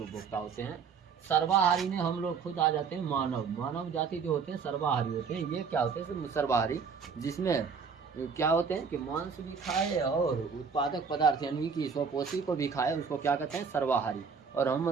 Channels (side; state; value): left; quieter; 5.8 dB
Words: उपभोक्ता होते हैं। सर्वाहारी में हम लोग खुद आ जाते हैं मानव जाति जो होते हैं सर्वाहारी होते हैं। ये क्या होते हैं? सर्वाहारी, जिसमें क्या होते हैं कि मांस भी खाए और उत्पादक पदार्थ यानी कि स्वपोषी को भी खाए, उसको क्या कहते हैं? सर्वाहारी। और हम